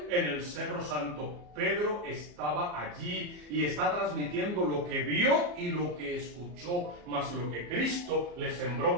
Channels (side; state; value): left; late; 34 ms